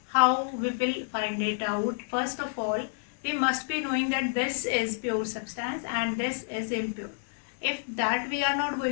how we will find it out. First of all, we must be knowing that this is pure substance and this is impure. If that we are not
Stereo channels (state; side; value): silent; right; digital silence